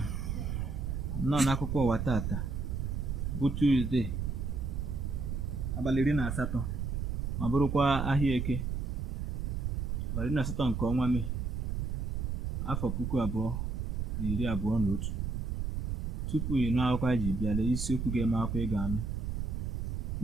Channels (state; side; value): noise; right; rumble, 1 dB below the sound